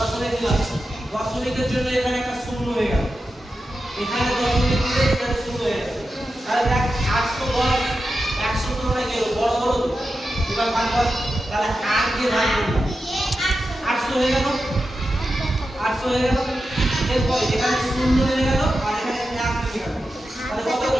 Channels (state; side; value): normal; both; correlation 0.90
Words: দিলাম দশমিকের জন্য এখানে একটা শূন্য হয়ে গেল এখানে দশমিক দিলে এখানে শূন্য হয়ে গেল তাহলে দেখ 810 100 তুলনায় কি বড় হলো এবার ভাগ কর তাহলে 8 দিয়ে ভাগ করলাম 800 হয়ে গেল 800 হয়ে গেল এরপর এখানে শূন্য হয়ে গেল আর এখানে 1 হয়ে গেল তাহলে কত